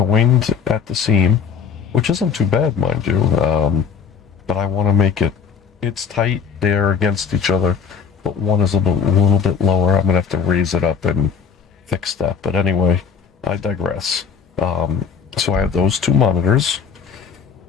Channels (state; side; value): quieter; right; 6.5 dB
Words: at the seam, which isn't too bad, mind you. But I want to make it, it's tight, they're against each other, but one is a little bit lower. I'm going to have to raise it up and fix that. But anyway, I digress. So I have those two monitors.